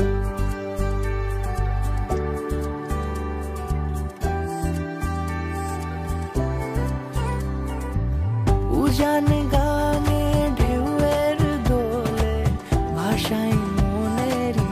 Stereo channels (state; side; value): identical; both; correlation 1.00